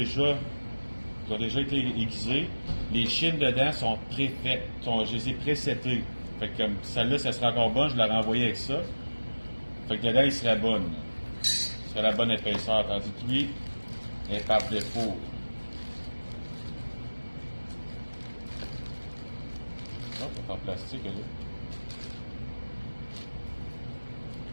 ont déjà été aiguisés, les chines dedans sont préfaites. Je les ai présetées. Fait que comme celle-là, ça serait encore bonne, je la renvoyais avec ça. Fait que dedans, il serait bonne. Ce serait la bonne épaisseur. Tandis que lui, elle est par défaut. Ça, c'est en plastique, là.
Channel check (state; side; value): inverted; both; correlation -1.00